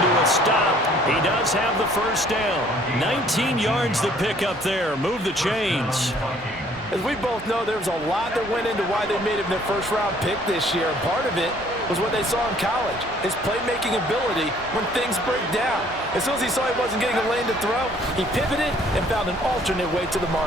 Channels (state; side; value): normal; both; correlation 0.59